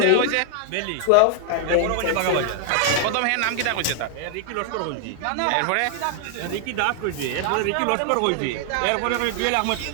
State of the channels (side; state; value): both; different; correlation 0.00